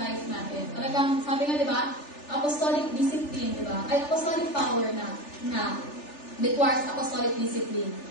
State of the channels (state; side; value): late; right; 3.4 ms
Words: life natin. Talagang, sabi nga, di ba, apostolic discipline, di ba? Ay, apostolic power na requires apostolic discipline.